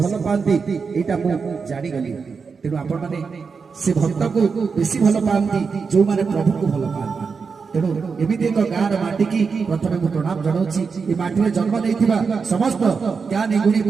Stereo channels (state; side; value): quieter; left; 5.3 dB